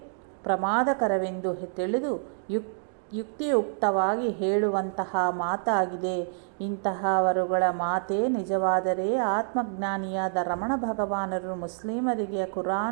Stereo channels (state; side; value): silent; left; digital silence